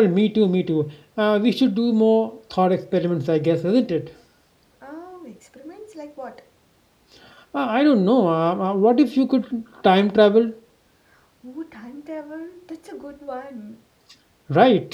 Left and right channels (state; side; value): identical; both; correlation 1.00